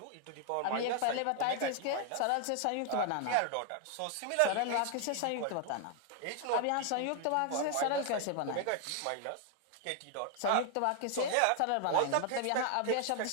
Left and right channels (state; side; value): different; both; correlation 0.00